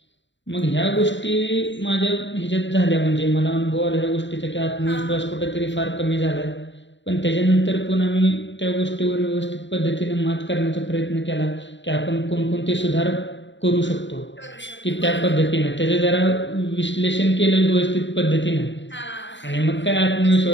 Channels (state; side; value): late; right; 0.53 ms